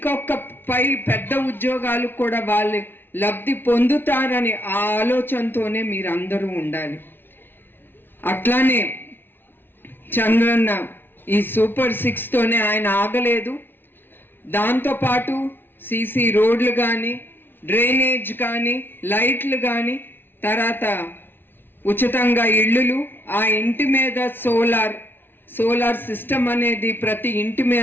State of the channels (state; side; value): late; right; 0.10 ms